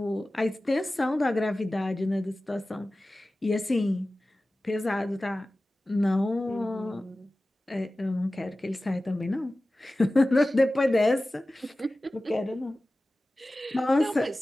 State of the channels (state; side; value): normal; both; correlation 0.96